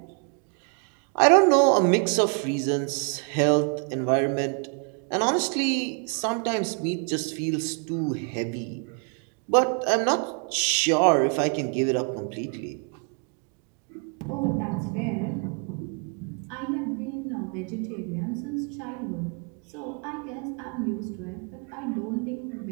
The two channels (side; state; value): left; quieter; 39.6 dB